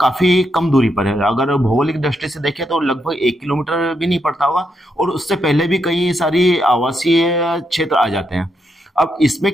काफी कम दूरी पर है। अगर भौगोलिक दृष्टि से देखें तो लगभग 1 किलोमीटर भी नहीं पड़ता होगा, और उससे पहले भी कई सारी आवासीय क्षेत्र आ जाते हैं। अब इसमें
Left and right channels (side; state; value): both; normal; correlation 0.81